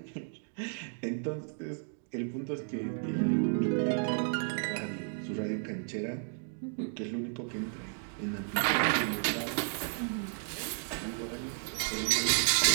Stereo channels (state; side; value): silent; left; 56 dB below the other